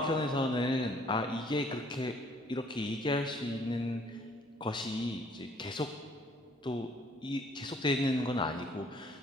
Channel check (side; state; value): both; normal; correlation 0.60